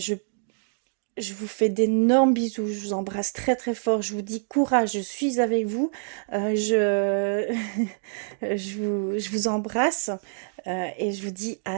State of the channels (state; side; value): silent; left; 61 dB below the other